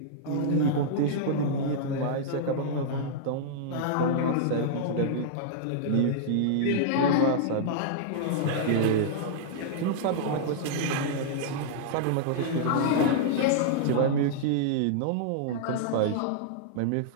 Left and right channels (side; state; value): both; different; correlation -0.02